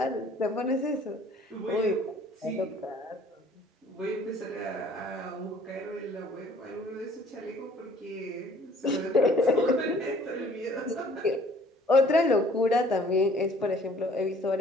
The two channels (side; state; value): both; normal; correlation 0.55